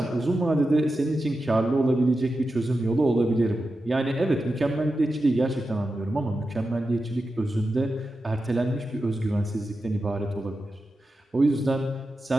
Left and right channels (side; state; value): both; normal; correlation 0.91